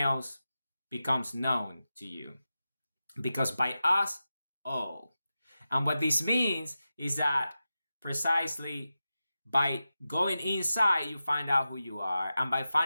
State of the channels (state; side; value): inverted; both; correlation -0.92